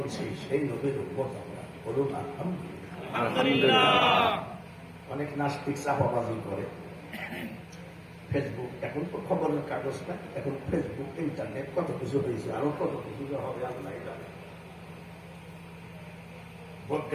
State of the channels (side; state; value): both; identical; correlation 1.00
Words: সেই নবীর উম্মত আমরা, বলুন আলহামদুলিল্লাহ। অনেক নাস্তিক চাপাবাজি করে। ফেসবুক, এখন তো খবরের কাগজ না, এখন ফেসবুক, ইন্টারনেট, কত কিছু হয়েছে, আরো কত কিছু হবে আল্লাহ জানে।